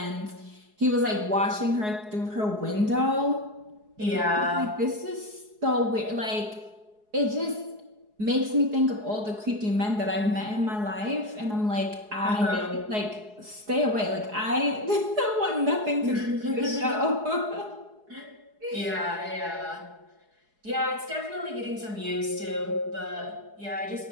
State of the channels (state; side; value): late; left; 4.8 ms